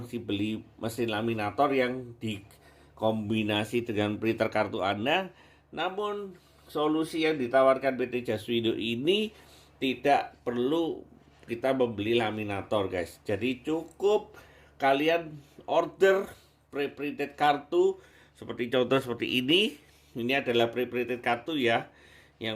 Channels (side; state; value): both; identical; correlation 1.00